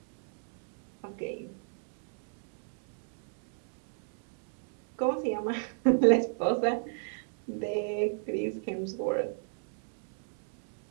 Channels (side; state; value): left; silent; digital silence